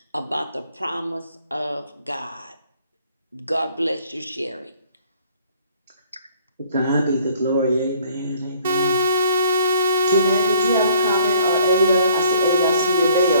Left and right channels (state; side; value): inverted; both; correlation -0.57